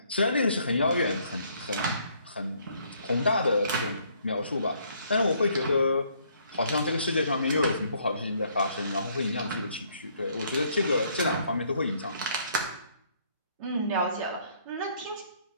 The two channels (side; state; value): both; inverted; correlation -0.66